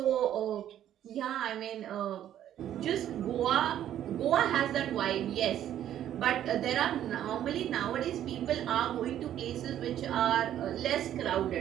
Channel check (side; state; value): left; quieter; 11.2 dB